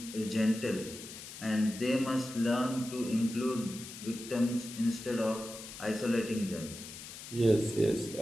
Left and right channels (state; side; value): noise; left; hiss, 12 dB below the sound